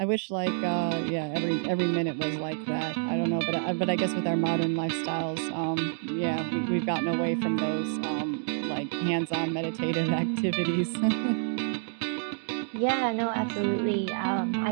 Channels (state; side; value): silent; left; digital silence